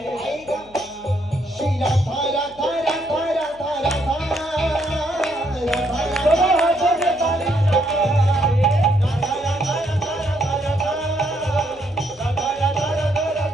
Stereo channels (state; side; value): noise; left; hum, 26 dB below the sound